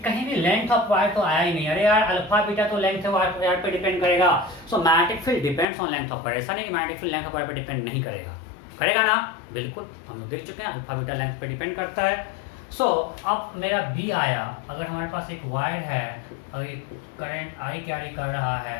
भी लेंथ ऑफ वायर तो आया ही नहीं। अरे यार अल्फा बीटा तो लेंथ ऑफ वायर पे डिपेंड करेगा। सो magnetic field depends on length of wire. ऐसा नहीं कि magnetic field length of wire पे डिपेंड नहीं करेगा, करेगा ना, बिल्कुल हम लोग देख चुके हैं अल्फा बीटा लेंथ पे डिपेंड करता है। सो अब मेरा बी आया, अगर हमारे पास एक वायर है और एक करंट आई कैरी कर रहा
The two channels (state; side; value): drops out; right; at 5.7 s